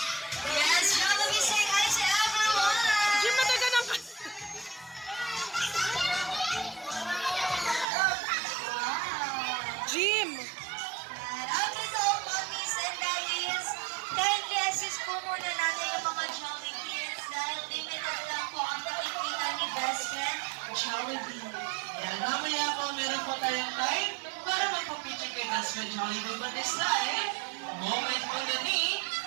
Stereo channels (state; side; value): drops out; left; at 7.9 s